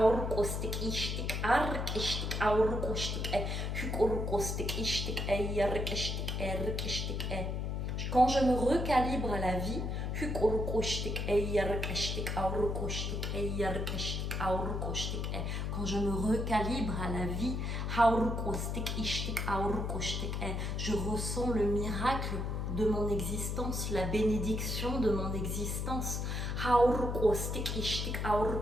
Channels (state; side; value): noise; left; hum, 1 dB below the sound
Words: Quand je me recalibre à la vie, quand je me recalibre à la vie, je ressens le miracle de mon existence, la bénédiction de mon existence.